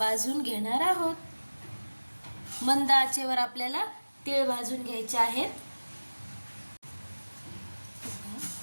घेणार आहोत। मंद आचेवर आपल्याला तीळ भाजून घ्यायचे आहेत।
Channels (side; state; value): both; inverted; correlation -1.00